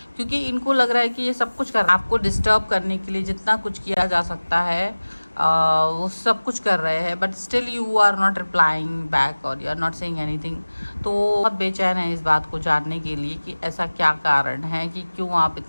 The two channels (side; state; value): both; inverted; correlation -1.00